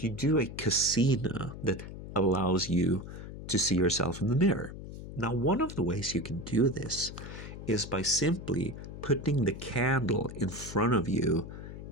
you do a casino that allows you to see yourself in the mirror. Now, one of the ways you can do this is by simply putting the candle in front of you,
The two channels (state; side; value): noise; left; hum, 11 dB below the sound